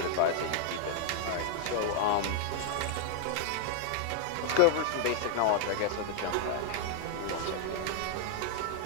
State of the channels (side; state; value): both; different; correlation -0.01